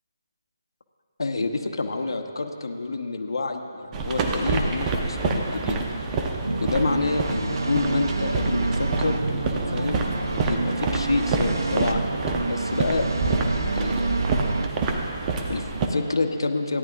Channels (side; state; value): both; inverted; correlation -0.76